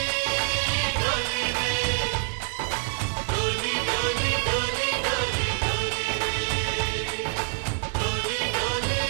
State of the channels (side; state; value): left; silent; 61 dB below the other